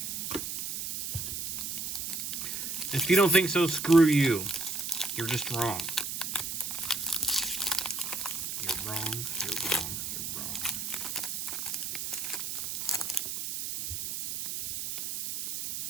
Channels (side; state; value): right; noise; hiss, 4 dB below the sound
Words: If you don't think so, screw you. You're just wrong. You're wrong, you're wrong, you're wrong.